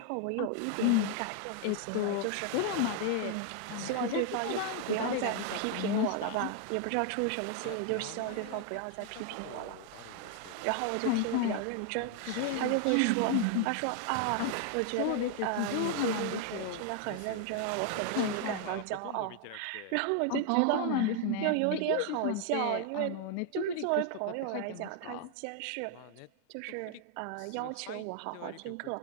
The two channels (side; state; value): both; different; correlation 0.00